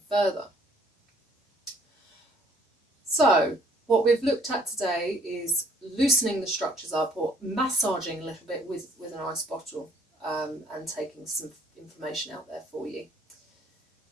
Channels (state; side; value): normal; both; correlation 0.60